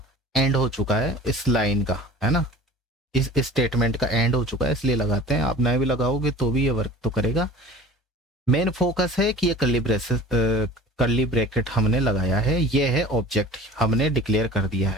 एंड हो चुका है, इस लाइन का, है ना, इस स्टेटमेंट का एंड हो चुका है, इसलिए लगाते हैं। आप नए भी लगाओगे तो भी ये वर्क तो करेगा। मेन फोकस है कि ये कर्ली ब्रैकेट हमने लगाया है, ये है ऑब्जेक्ट, हमने डिक्लेयर कर दिया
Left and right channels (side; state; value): both; normal; correlation 0.43